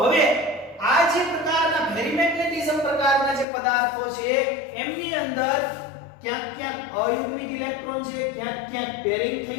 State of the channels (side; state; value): right; drops out; at 3.5 s